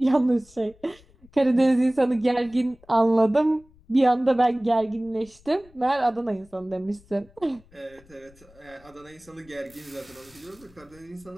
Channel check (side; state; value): left; noise; rumble, 27 dB below the sound